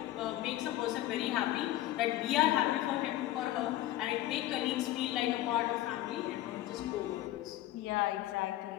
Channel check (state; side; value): quieter; right; 14.8 dB